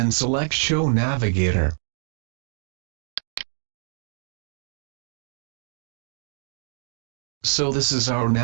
select Show Navigator. So this is our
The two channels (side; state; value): left; silent; digital silence